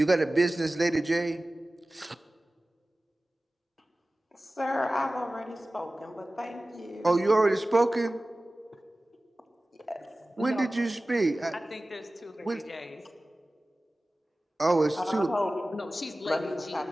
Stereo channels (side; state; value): both; normal; correlation 0.97